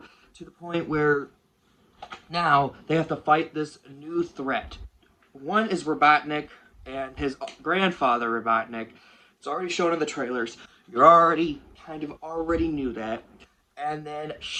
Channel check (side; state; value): both; identical; correlation 1.00